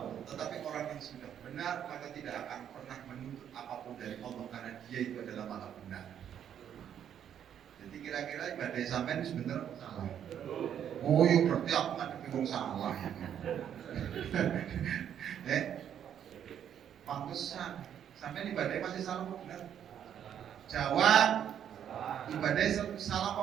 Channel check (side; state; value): left; quieter; 9.4 dB